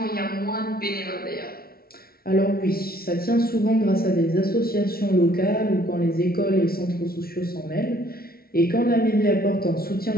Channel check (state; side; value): late; right; 0.44 ms